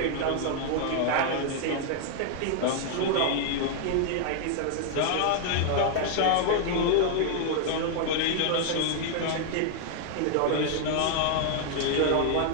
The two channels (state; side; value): different; both; correlation 0.00